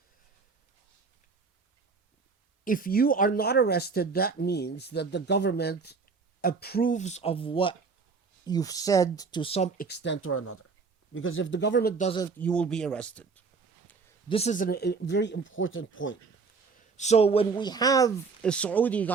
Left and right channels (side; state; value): left; quieter; 4.8 dB